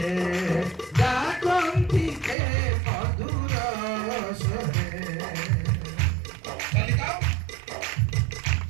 গায় কন্তিকে মধুর সরে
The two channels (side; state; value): left; drops out; at 2.4 s